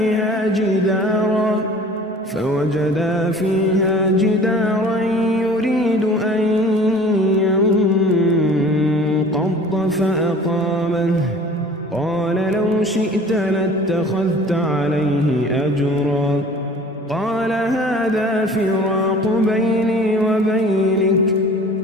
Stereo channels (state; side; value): normal; both; correlation 0.46